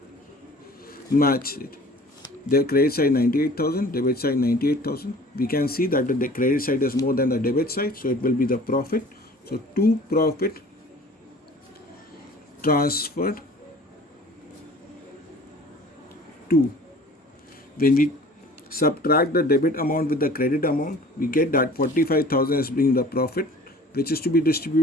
match it. Their credit side 98,000, debit side 98,000. We can see that the credit side is more than the debit side, so it will be the profit. So to profit transferred to, when we subtract the debit amount with the credit amount, we get that 45,000 is being the profit, which is to be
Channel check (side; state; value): both; normal; correlation 0.47